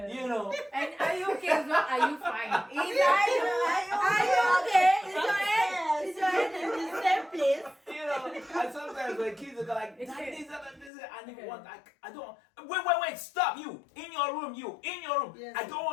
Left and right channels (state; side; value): drops out; right; at 10.9 s